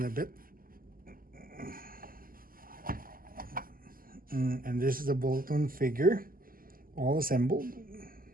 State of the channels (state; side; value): late; left; 0.42 ms